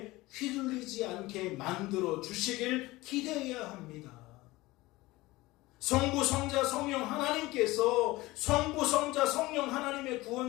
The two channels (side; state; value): right; quieter; 19.8 dB